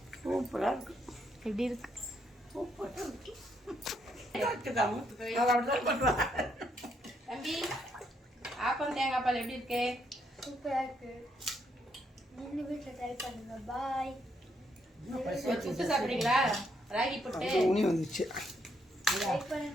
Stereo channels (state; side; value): normal; both; correlation 0.75